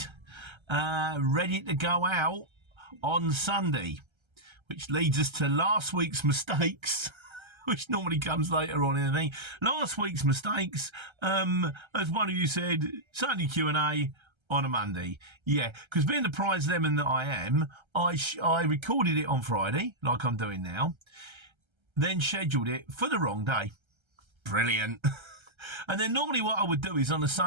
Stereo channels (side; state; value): left; late; 1.3 ms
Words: ready to go out on Sunday. Which leads us to last week's mistakes, which normally comes later on in the thing. Last week's mistakes, as one of you said, Sunday Q&A on a Monday. Yeah, because being the prize lemon that I am, I recorded it on Friday, like I'm doing now, then scheduled it for the wrong day. Brilliant. And then normally what I would do is on a